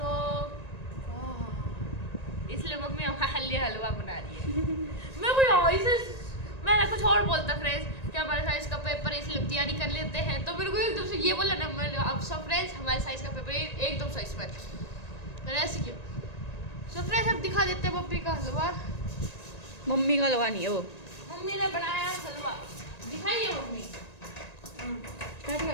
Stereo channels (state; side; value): late; right; 1.9 ms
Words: इसलिए मम्मी हमारे हलवा बना रही है। मैं कोई ऐसे मैं कुछ और बोलता फ्रेंड्स कि हमारे साइंस का पेपर है इसलिए तैयारी कर लेते हैं, तो मेरे को एकदम से ये बोला ना, मैंने अब सब फ्रेंड्स हमारे साइंस का पेपर एकदम साइंस पर मैंने ऐसे किया। सो फ्रेंड्स अब दिखा देते हैं मम्मी का हलवा। मम्मी का हलवा नहीं है वो। मम्मी ने बनाया हलवा, दिखाइए मम्मी।